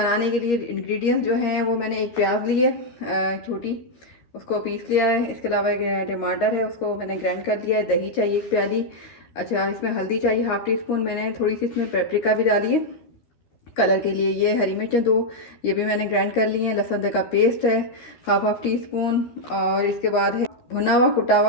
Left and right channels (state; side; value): late; right; 13 ms